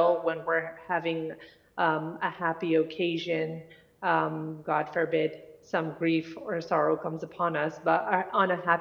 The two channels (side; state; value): both; identical; correlation 1.00